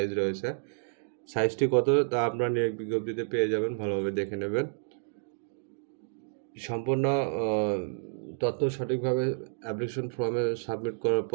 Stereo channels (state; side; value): silent; left; digital silence